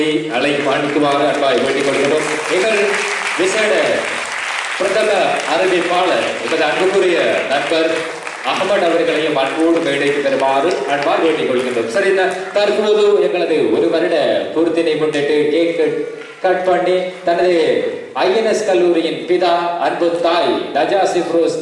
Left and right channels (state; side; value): identical; both; correlation 1.00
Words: அழைக்குமாறு அன்பாய் வேண்டிக் கொள்கிறோம். எங்கள் விசேட பிரதம அறிவிப்பாளர் எமது அன்புக்குரிய நண்பர் அகமது அவர்களையும் அன்போடு மேடைக்கு பெறுமாறு அன்பால் வேண்டிக் கொள்கின்றோம். சரி, தற்போது எங்களது ஒரு வருட பூர்த்தினை முன்னிட்டு கேக் கட் பண்ணி தனது ஐஎன்எஸ் கல்லூரியின் பிதா அன்பு தாய் நஜா சிப்ரோஸ்